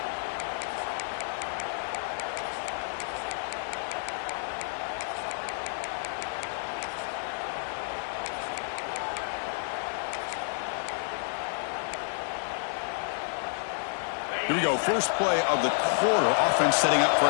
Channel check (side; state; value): right; silent; digital silence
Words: Here we go, first play of the quarter. Offense setting up for